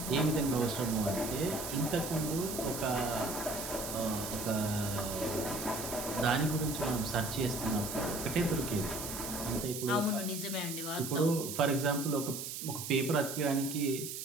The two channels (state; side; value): noise; right; hiss, 6 dB below the sound